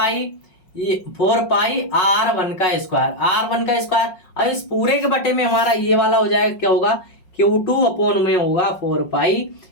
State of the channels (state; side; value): late; right; 5.5 ms